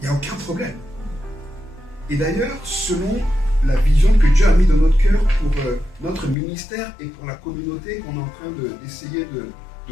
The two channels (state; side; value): drops out; right; at 6.4 s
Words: Il n'y a aucun problème. Et d'ailleurs, selon la vision que Dieu a mis dans notre cœur pour notre ministère et pour la communauté qu'on est en train d'essayer de